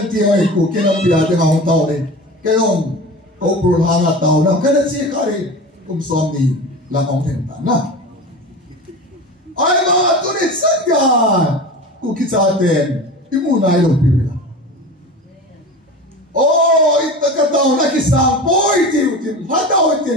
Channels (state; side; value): normal; both; correlation 0.32